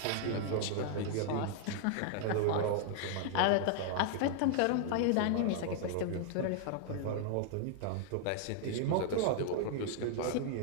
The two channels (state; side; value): different; both; correlation 0.00